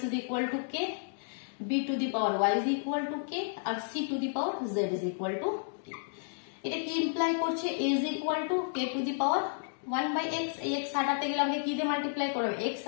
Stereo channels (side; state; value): right; silent; digital silence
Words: is equal to k, b to the power y is equal to k, আর c to the power z is equal to k. এটা কি ইমপ্লাই করছে, a is equal to k to the power 1/x। এই x হাটাতে গেলে আমাকে কি দিয়ে multiply করবে, x